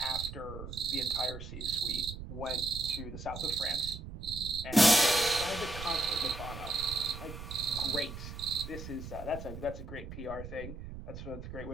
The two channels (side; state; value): right; noise; rumble, 10 dB below the sound